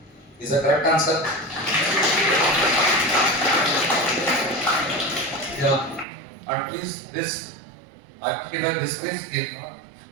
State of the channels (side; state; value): left; drops out; at 6.1 s